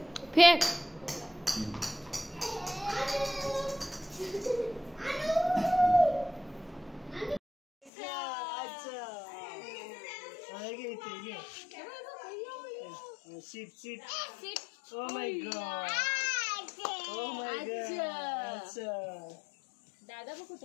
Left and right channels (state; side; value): drops out; right; at 7.9 s